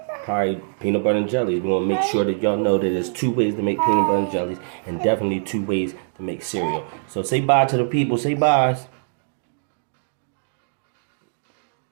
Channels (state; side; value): silent; left; digital silence